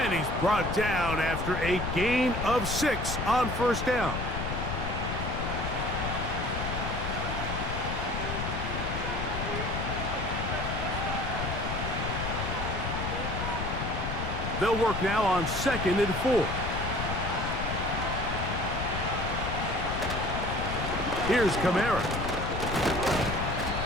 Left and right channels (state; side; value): noise; left; rumble, 4 dB below the sound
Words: he's brought down after a gain of 6 on first down. They'll work now on 2nd and 4. Here's Kamara.